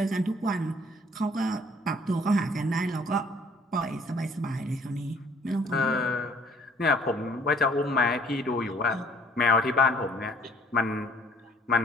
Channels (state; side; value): normal; both; correlation 0.59